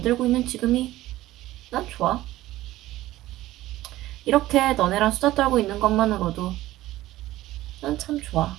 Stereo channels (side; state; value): left; quieter; 16.0 dB